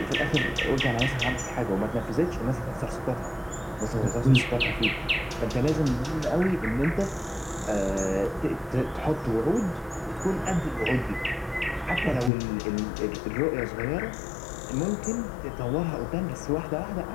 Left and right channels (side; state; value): right; drops out; at 12.3 s